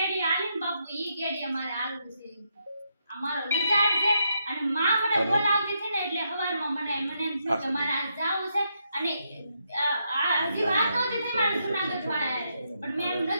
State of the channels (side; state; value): both; inverted; correlation -0.80